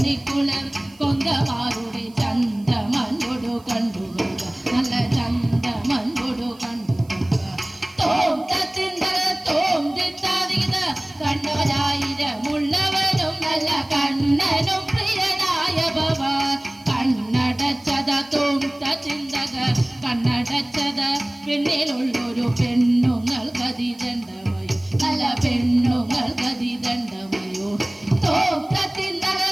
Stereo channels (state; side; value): noise; right; hiss, 28 dB below the sound